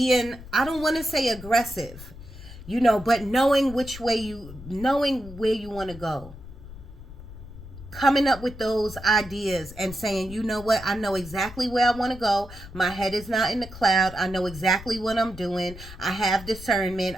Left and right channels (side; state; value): left; noise; rumble, 15 dB below the sound